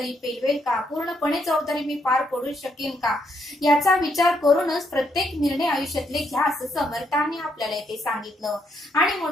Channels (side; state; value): both; normal; correlation 0.75